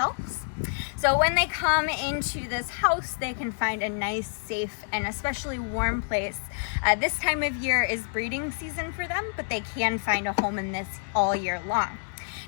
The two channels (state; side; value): silent; right; digital silence